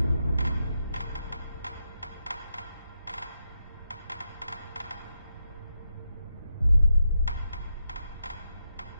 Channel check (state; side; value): inverted; both; correlation -0.85